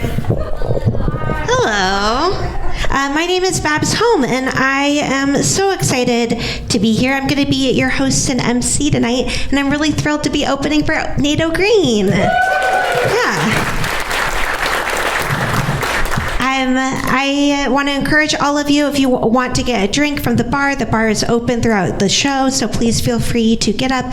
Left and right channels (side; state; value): both; identical; correlation 1.00